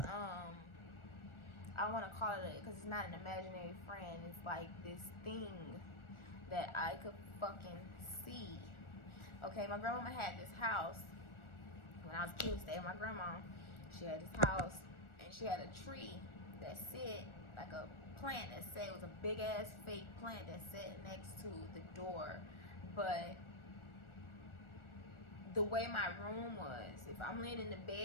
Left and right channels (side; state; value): right; late; 1.4 ms